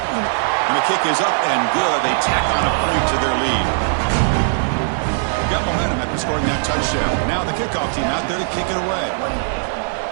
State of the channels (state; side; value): silent; left; 66 dB below the other